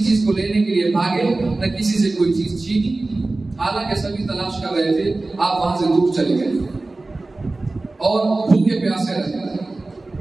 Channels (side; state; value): left; quieter; 3.2 dB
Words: چیز کو لینے کے لیے بھاگے، نہ کسی سے کوئی چیز چھینی، حالانکہ سبھی تلاش کر رہے تھے، آپ وہاں سے دور چلے گئے اور بھوکے پیاسے رہے۔